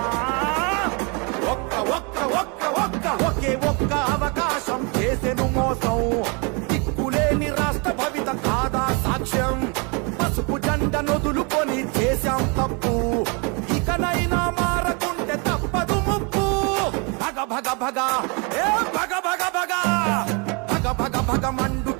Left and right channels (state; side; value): quieter; left; 32.5 dB